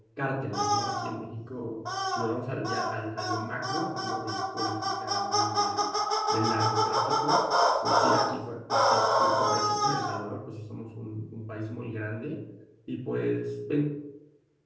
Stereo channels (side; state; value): both; identical; correlation 1.00